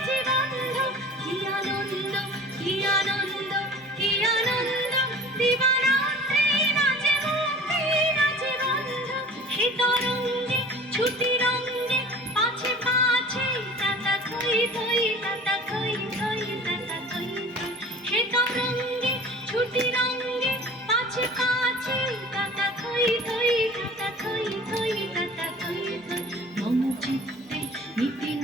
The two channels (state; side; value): normal; both; correlation 0.43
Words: বন্ধ কি আনন্দ কি আনন্দ কি আনন্দ দিবারাত্রি নাচে মুক্তি নাচে বন্ধ হে তরঙ্গে ছুটি রঙ্গে পাছে পাছে তাতা থই থই তাতা থই থই তাতা থই থই হে তরঙ্গে ছুটি রঙ্গে পাছে পাছে তাতা থই থই তাতা থই থই তাতা থই থই মম চিত্তে নিতে